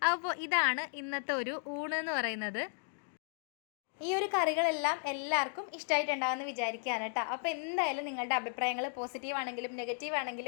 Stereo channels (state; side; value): silent; right; 55 dB below the other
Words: അപ്പോൾ ഇതാണ് ഇന്നത്തെ ഒരു ഊണ് എന്ന് പറയുന്നത്. ഈ ഒരു കറികളെല്ലാം എല്ലാവർക്കും ഇഷ്ടമായിട്ടുണ്ടാകുമെന്ന് വിചാരിക്കുകയാണ് കേട്ടോ. അപ്പോൾ എന്തായാലും നിങ്ങളുടെ അഭിപ്രായങ്ങൾ പോസിറ്റീവ് ആണെങ്കിലും നെഗറ്റീവ്